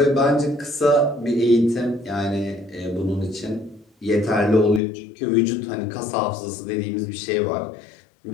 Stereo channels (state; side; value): drops out; right; at 4.8 s